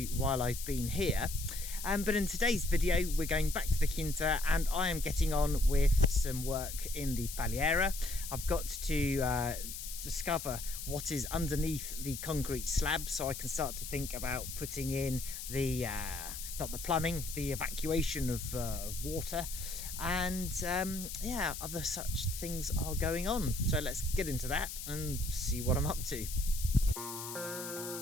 while I've been here. But in today's video, we're going back to the Quinta, and I am getting on with some work in the Paliera. I've got to discover what is underneath the concrete slab, so I can start to think about putting in the not the plumbing, the evacuation of water, and yeah, other such things are going on. So let's get into that and see what I'm up to.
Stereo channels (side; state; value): left; noise; hiss, 8 dB below the sound